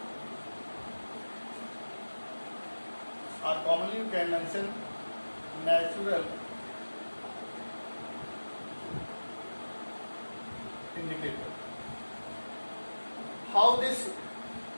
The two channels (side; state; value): both; inverted; correlation -1.00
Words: or commonly you can mention natural indicator. How this